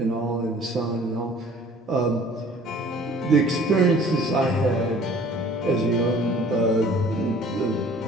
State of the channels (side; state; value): both; normal; correlation 0.51